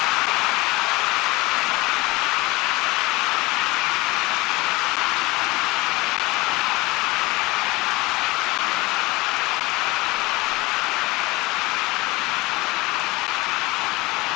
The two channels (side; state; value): right; quieter; 21.4 dB